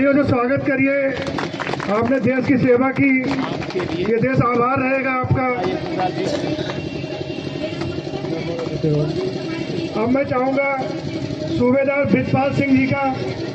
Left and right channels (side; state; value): both; identical; correlation 1.00